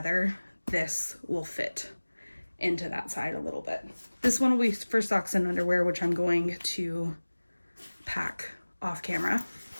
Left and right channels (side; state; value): both; inverted; correlation -1.00